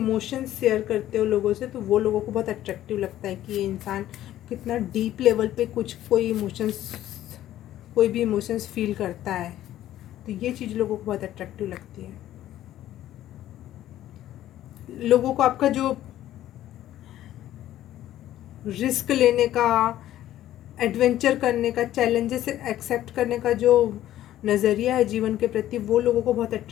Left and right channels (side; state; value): right; quieter; 13.1 dB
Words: शेयर करते हो लोगों से, तो वो लोगों को बहुत अट्रैक्टिव लगता है कि ये इंसान कितना डीप लेवल पे कोई भी इमोशंस फील करता है, तो ये चीज़ लोगों को बहुत अट्रैक्टिव लगती है। लोगों को आपका जो रिस्क लेने का, एडवेंचर करने का, चैलेंजेस एक्सेप्ट करने का जो नज़रिया है जीवन के प्रति, वो लोगों को बहुत